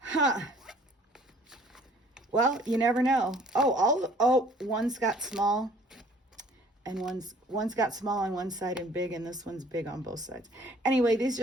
Well, you never know. Oh, one's got small. And one's got small on one side and big, and this one's big on both sides. Anyway, these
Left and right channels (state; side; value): normal; both; correlation 0.55